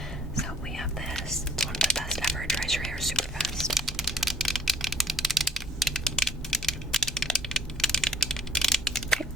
So we have this. It's one of the best ever. It dries your hair super fast. Okay,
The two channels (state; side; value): normal; both; correlation 0.55